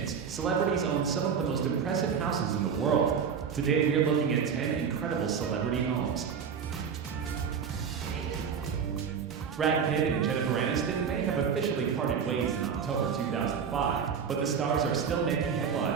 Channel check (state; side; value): quieter; left; 6.8 dB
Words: celebrities own some of the most impressive houses in the world. Today we are looking at 10 incredible celebrity homes. Brad Pitt and Jennifer Aniston may have officially parted ways in October 2005, but the stars are still making